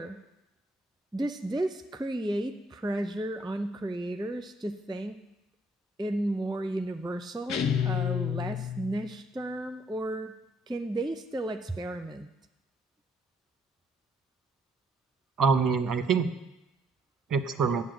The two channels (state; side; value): normal; both; correlation 0.68